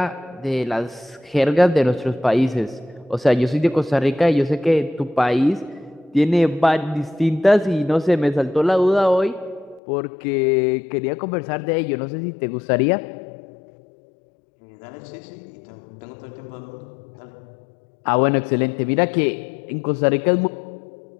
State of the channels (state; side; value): drops out; right; at 9.8 s